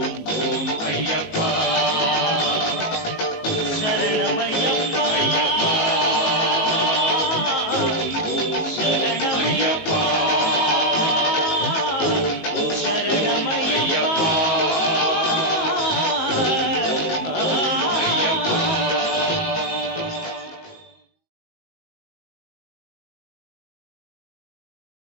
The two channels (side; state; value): right; late; 19 ms